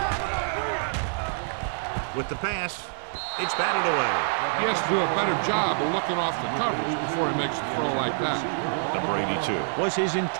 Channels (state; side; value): silent; left; digital silence